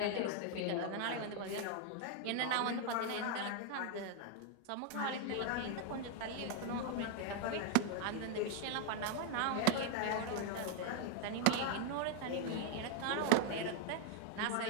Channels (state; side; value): different; both; correlation 0.00